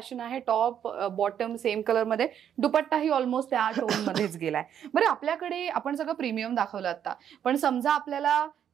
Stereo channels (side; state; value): left; quieter; 9.3 dB